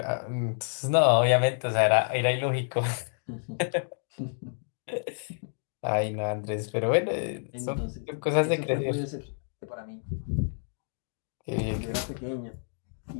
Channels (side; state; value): right; silent; digital silence